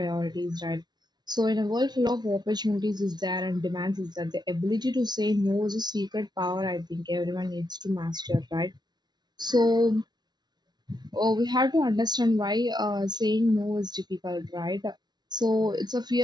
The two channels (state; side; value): late; left; 0.20 ms